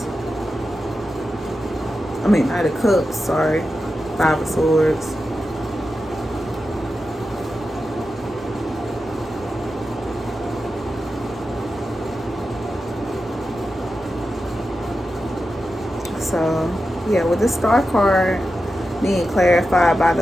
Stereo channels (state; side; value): normal; both; correlation 0.91